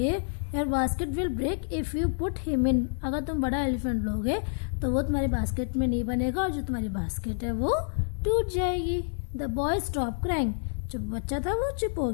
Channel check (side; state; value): right; silent; digital silence